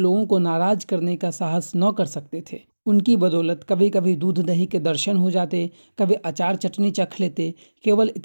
को नाराज करने का साहस न कर सकते थे। उनकी बदौलत कभी कभी दूध दही के दर्शन हो जाते, कभी अचार चटनी चख लेते। केवल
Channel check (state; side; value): inverted; both; correlation -1.00